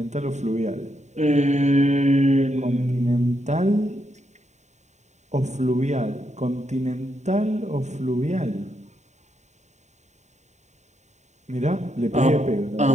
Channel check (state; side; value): late; left; 0.34 ms